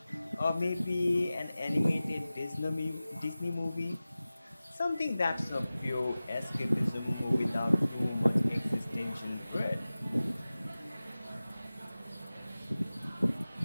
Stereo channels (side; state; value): both; inverted; correlation -0.97